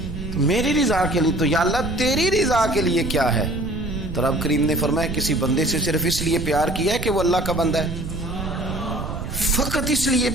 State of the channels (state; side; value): noise; right; rumble, 7 dB below the sound